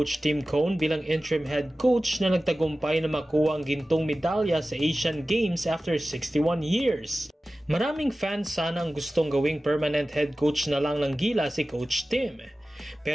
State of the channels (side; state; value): both; normal; correlation 0.96